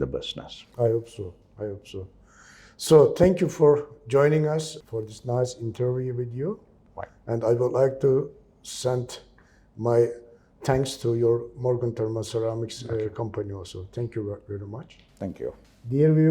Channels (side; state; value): both; identical; correlation 1.00